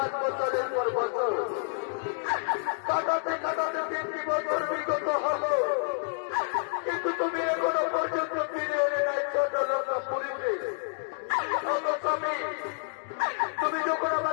বছরের পর বছর কাটাতে কাটাতে 3টি বছর বিগত হলো, কিন্তু তুমি এখনো পর্যন্ত ফিরে এলে নাই ছোট লঙ্কা পুরীতে। স্বামী, তুমি যখন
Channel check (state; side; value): silent; right; digital silence